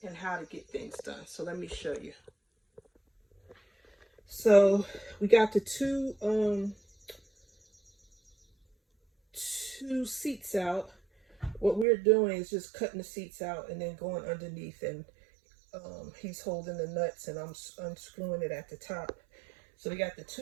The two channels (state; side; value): drops out; left; at 11.9 s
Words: and how to get things done. So let me show you. So we got the two seats out. What we're doing is just cutting the seats out and then going underneath, and he's holding the nuts and I'm unscrewing it at the top. So we got the